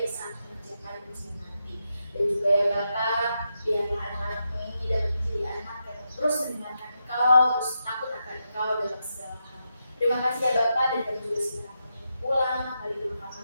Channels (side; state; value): both; inverted; correlation -0.85